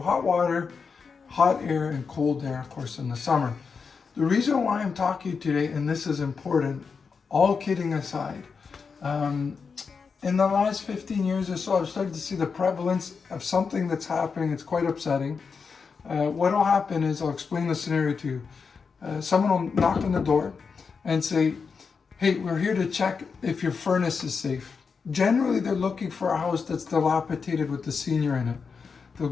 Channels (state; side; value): quieter; right; 5.4 dB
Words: water, hot air, and cold air, of course, in the summer. The reason why I'm talking today, and this is important, all kidding aside, in the last 15 years or so, I've started to see the prevalence of something that's happening. It's quite upsetting. What will happen is, I'll explain the scenario to you. Someone will knock on the door and say, hey, we're here to check if your furnace is safe. Generally, they're looking for a house that's dilapidated with the senior in it. They'll